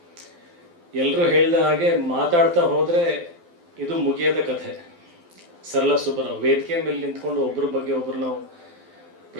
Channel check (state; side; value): late; left; 12 ms